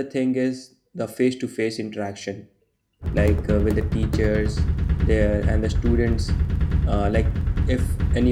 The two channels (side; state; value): both; identical; correlation 1.00